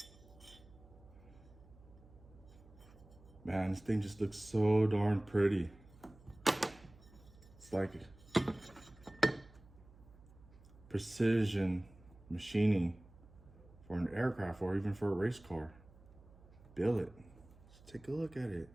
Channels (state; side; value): noise; right; hum, 23 dB below the sound